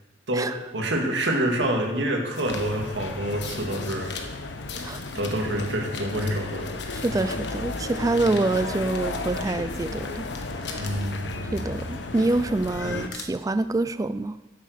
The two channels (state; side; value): normal; both; correlation 0.58